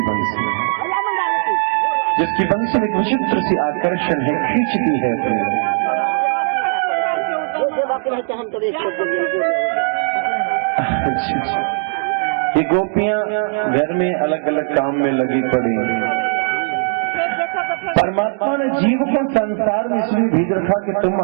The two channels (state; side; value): silent; left; digital silence